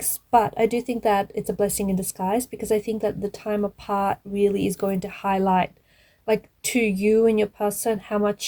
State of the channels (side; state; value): both; identical; correlation 1.00